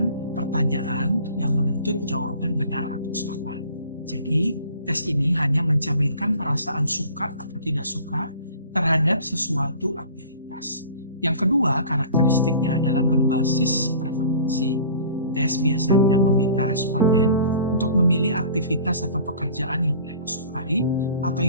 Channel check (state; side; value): inverted; both; correlation -0.46